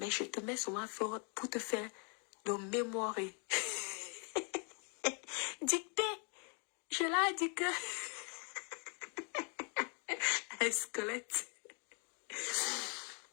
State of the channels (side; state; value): right; quieter; 37.4 dB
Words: je te mets souvent pour te faire le mémoire. Dictée, je l'ai dit que un squelette.